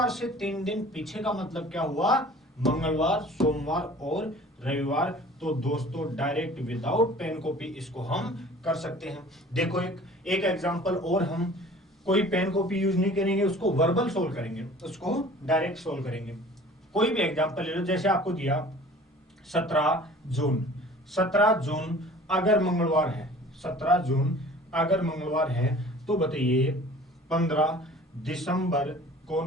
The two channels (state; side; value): normal; both; correlation 0.47